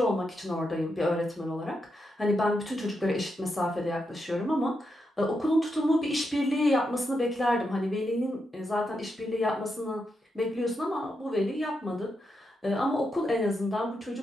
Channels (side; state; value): both; normal; correlation 0.84